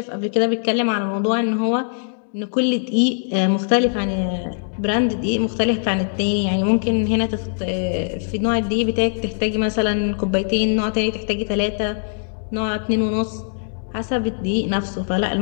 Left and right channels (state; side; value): silent; right; digital silence